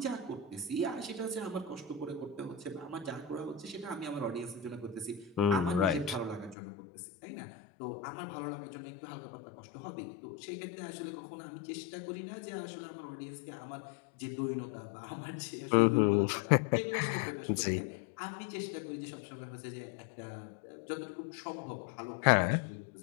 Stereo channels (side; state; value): right; drops out; at 6.6 s